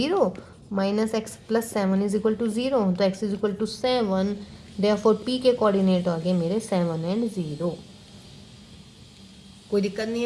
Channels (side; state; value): both; identical; correlation 1.00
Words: - x + 7 इज इक्वल टू 0, तो x = 7, देयरफॉर P के कोऑर्डिनेट आ गए मेरे 7 and 0। कोई दिक्कत नहीं